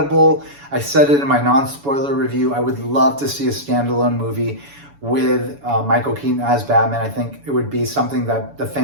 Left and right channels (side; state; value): left; late; 7.1 ms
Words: I said it in my non-spoiler review. I would love to see a standalone movie with Michael Keaton as Batman. I think it would be something that the